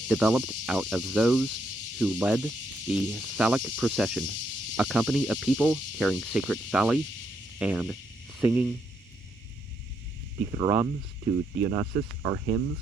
developed out of those who led the phallic procession, a company of people carrying sacred phalli and singing dithyrambs to Dionysus, or hymns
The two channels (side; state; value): both; normal; correlation 0.77